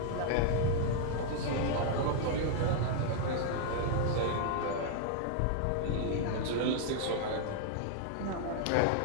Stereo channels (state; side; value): different; both; correlation -0.01